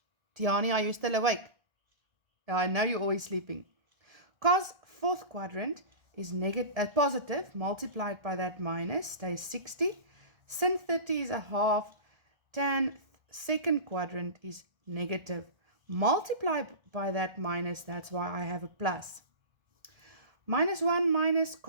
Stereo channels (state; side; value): late; left; 1.4 ms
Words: Tiani, are you still awake? I know you're always sleeping. Cos fourth quadrant is positive, multiplied by that minus, stays 60. Sin 30 is a half. Tan second quadrant is negative. Multiply by that minus, that's why I have a plus. Minus 1 minus